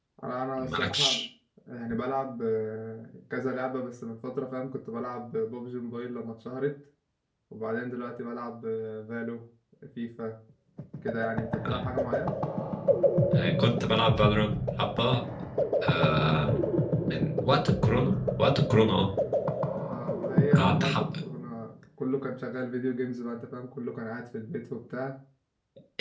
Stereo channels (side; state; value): both; identical; correlation 1.00